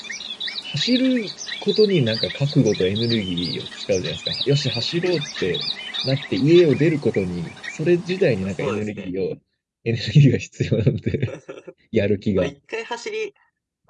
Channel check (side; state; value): both; identical; correlation 1.00